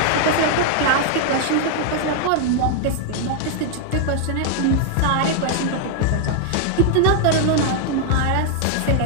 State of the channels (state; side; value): different; both; correlation 0.00